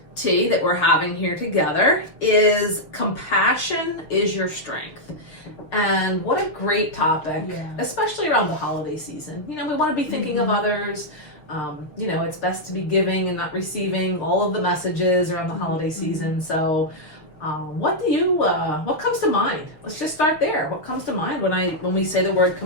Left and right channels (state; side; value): late; right; 6.7 ms